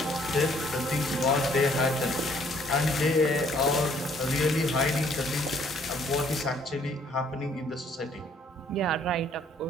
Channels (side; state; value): both; normal; correlation 0.63